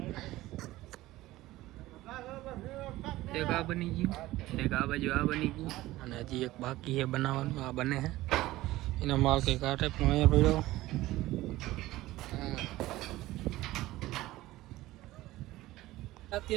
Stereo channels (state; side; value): quieter; left; 17.1 dB